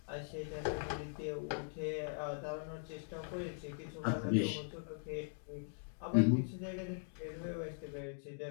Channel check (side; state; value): right; silent; digital silence